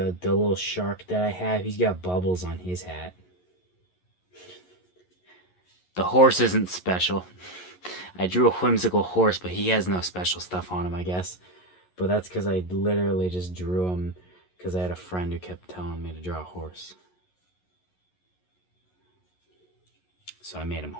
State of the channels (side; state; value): right; late; 11 ms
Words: little shark that I have, he's got bubbles on his hat. The horse isn't special. I drew a whimsical horse, but he has no special stuff on him, I guess. But that's because I literally just drew him because I had a friend who kept telling me to draw a horse. So I made him